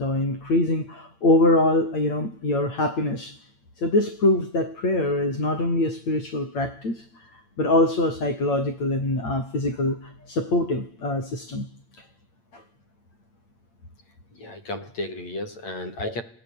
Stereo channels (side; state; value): right; late; 8.8 ms